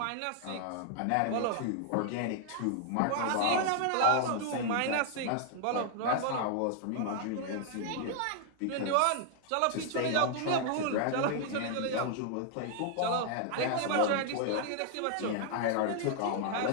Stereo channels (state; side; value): different; both; correlation 0.00